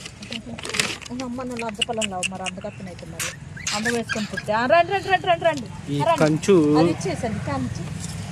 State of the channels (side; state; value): both; identical; correlation 1.00